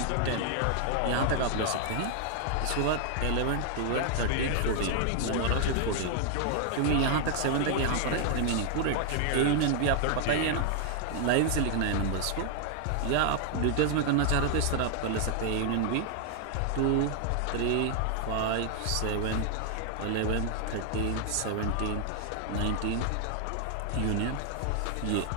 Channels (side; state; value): both; different; correlation 0.00